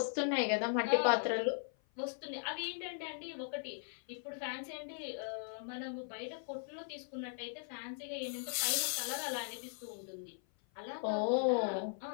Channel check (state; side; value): silent; right; 52 dB below the other